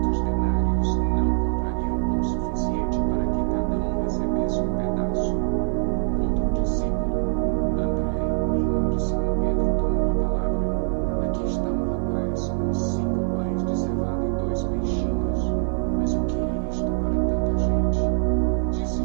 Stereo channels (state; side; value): silent; left; digital silence